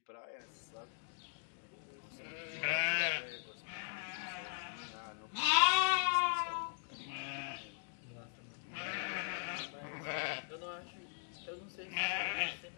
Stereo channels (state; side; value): silent; right; digital silence